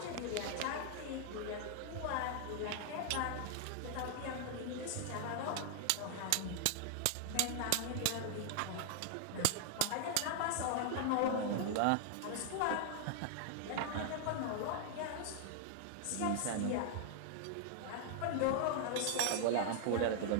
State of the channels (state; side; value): different; both; correlation 0.00